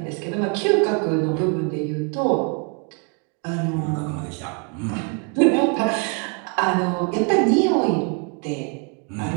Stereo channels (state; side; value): quieter; left; 35.9 dB